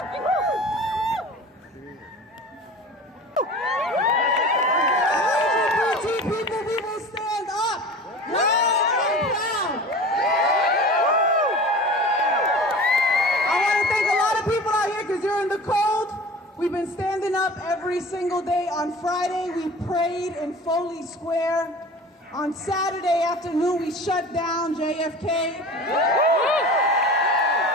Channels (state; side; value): normal; both; correlation 0.38